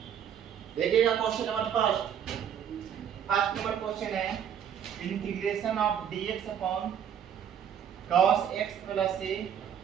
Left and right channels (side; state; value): left; quieter; 8.8 dB